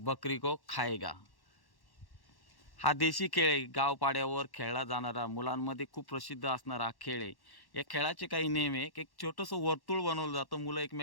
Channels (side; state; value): right; late; 1.1 ms